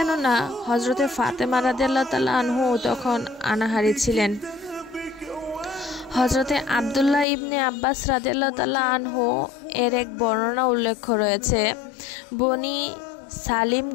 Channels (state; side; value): drops out; right; at 7.2 s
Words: হযরতে ফাতেমা রাদিয়াল্লাহু তাআলা আনহু তখন অনাহারী ছিলেন। হযরতে আব্দুল্লাহ ইবনে আব্বাস রাদিয়াল্লাহু তাআলা আনহু এর এক বর্ণনা উল্লেখ রয়েছে, বনি সালিম